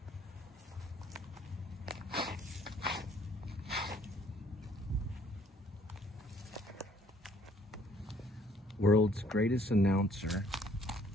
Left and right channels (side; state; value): both; normal; correlation 0.61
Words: World's greatest announcer.